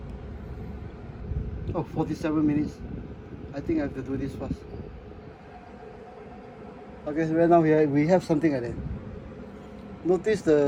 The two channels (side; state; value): both; identical; correlation 1.00